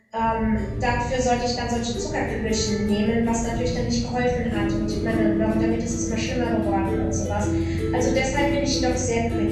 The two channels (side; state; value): both; identical; correlation 1.00